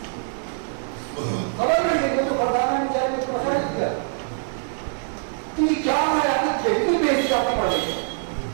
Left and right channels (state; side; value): silent; left; digital silence